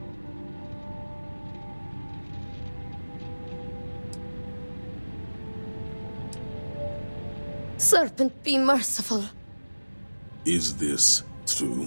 Serpent, be merciful. Is this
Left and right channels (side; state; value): both; inverted; correlation -1.00